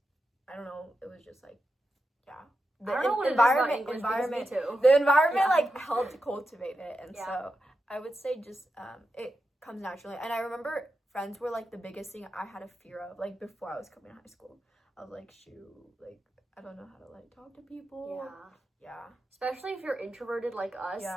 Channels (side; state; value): both; normal; correlation 0.89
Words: I don't know, it was just like the environment like helped cultivate it, and so I would say just it comes naturally. And I remember friends were like the biggest thing I had a fear of, like before I was coming to high school. I was like, like I don't know how to like talk to people. Especially if you're introverted like us.